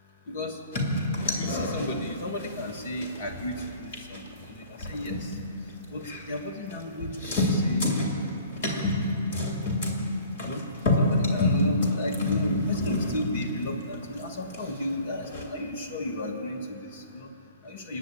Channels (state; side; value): inverted; both; correlation -0.49